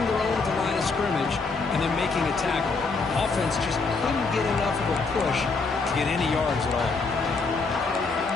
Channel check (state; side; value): quieter; right; 4.2 dB